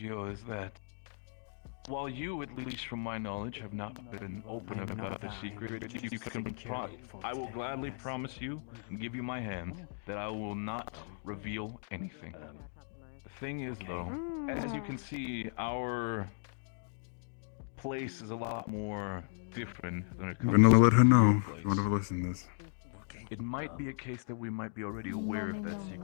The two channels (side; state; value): right; silent; digital silence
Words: is that while you, at least from my knowledge, have not been open about the secret, you can I will gladly promise you and give you my hand that I will not reveal anything. The thing is, though, as you can see, our place is a lot more different than it I'm comes gonna let her to know your if place. you want to listen to this. It might be a case that we might be already aware of that